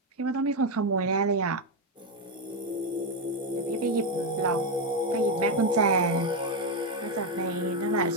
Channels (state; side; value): normal; both; correlation 0.07